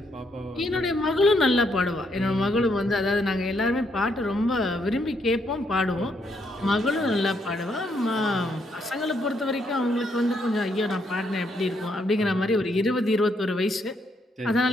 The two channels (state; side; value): normal; both; correlation 0.75